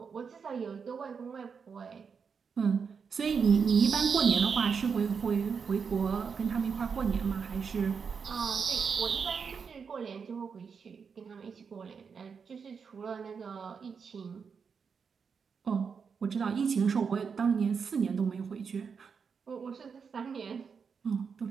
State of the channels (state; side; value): quieter; left; 6.0 dB